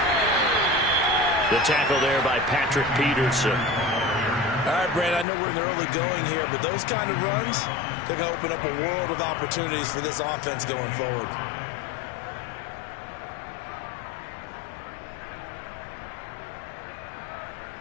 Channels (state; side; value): drops out; right; at 5.2 s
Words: The tackle there by Patrick Peterson. All right, Brandon, I know we're in the early going here, but those kind of runs, they're going to open up a world of opportunities for this offense going forward.